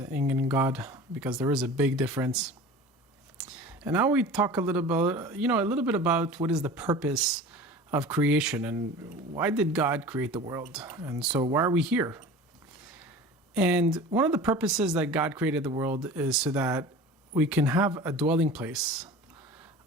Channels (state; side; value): normal; both; correlation 0.38